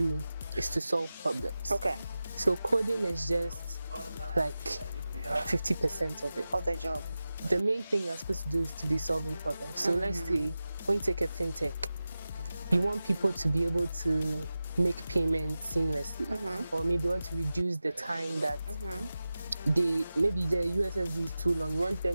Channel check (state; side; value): inverted; both; correlation -0.95